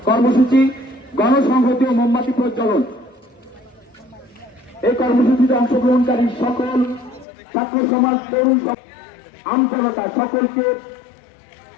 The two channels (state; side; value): drops out; right; at 7.2 s